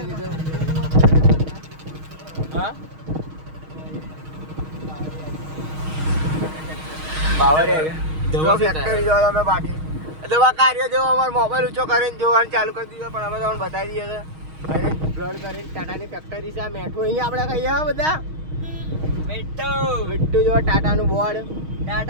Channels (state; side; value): late; left; 6.4 ms